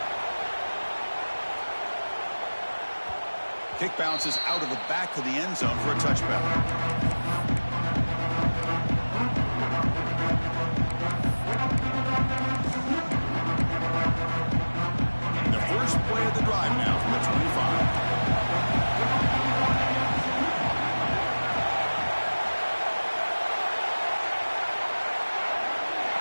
Kick bounces out of the back of the end zone for a touchback. First play of the drive now from the 25.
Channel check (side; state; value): both; inverted; correlation -1.00